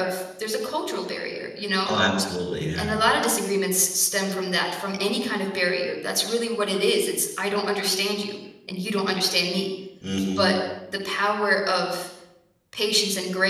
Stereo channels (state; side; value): identical; both; correlation 1.00